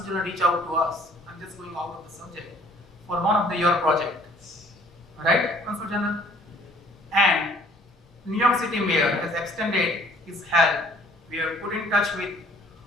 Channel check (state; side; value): normal; both; correlation 0.57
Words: General reached out to us. I'm just going out of the subject for one of your projects, right, Consul General? And New York City Mayor has extended his help. We have put in touch with